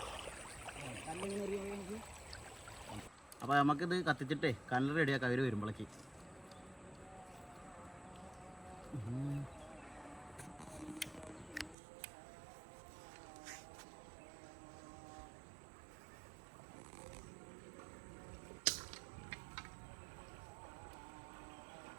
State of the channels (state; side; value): drops out; left; at 11.8 s